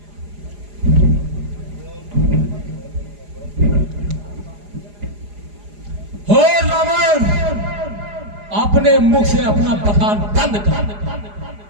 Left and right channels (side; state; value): left; late; 4.9 ms